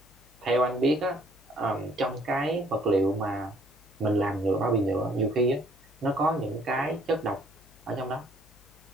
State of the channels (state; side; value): noise; left; hum, 27 dB below the sound